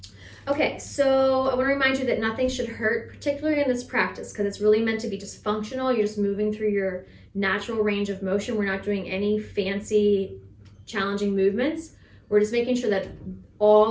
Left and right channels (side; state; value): both; identical; correlation 1.00